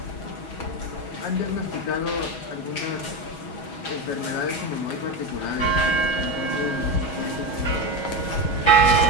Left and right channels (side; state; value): right; late; 6.2 ms